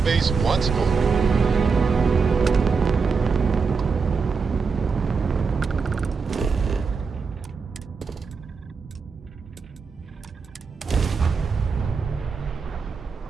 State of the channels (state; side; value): quieter; left; 5.2 dB